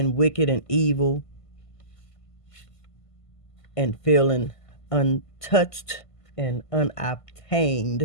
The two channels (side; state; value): right; late; 1.5 ms